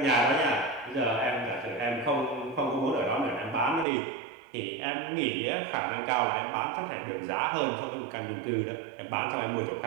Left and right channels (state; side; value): drops out; left; at 3.9 s